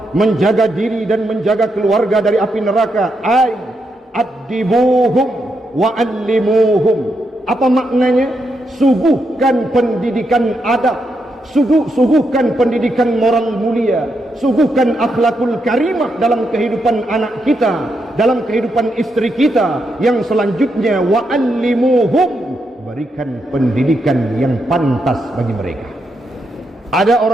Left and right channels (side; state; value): both; normal; correlation 0.82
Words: menjaga diri dan menjaga keluarga dari api neraka. Ay addibuhum wa allimuhum. Apa maknanya? Suguhkan pendidikan adab, suguhkan pendidikan moral mulia, suguhkan akhlakul karimah dalam kehidupan anak kita, dalam kehidupan istri kita. Yang selanjutnya wa'allimuhum, berikan pendidikan yang pantas bagi mereka. Ada